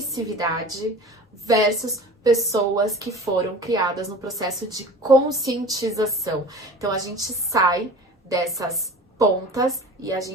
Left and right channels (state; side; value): normal; both; correlation 0.39